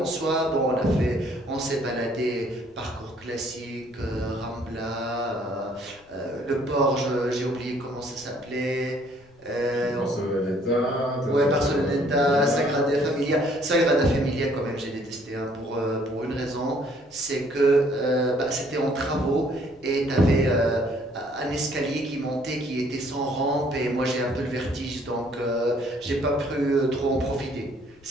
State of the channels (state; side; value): noise; left; rumble, 29 dB below the sound